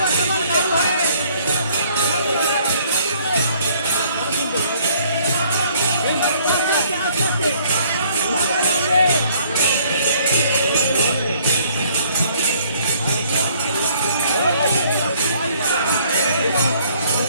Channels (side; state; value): both; inverted; correlation -0.61